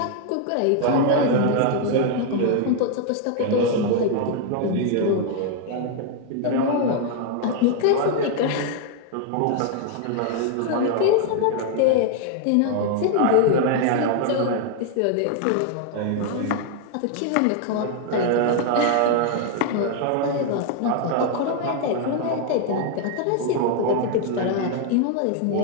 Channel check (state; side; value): different; both; correlation 0.00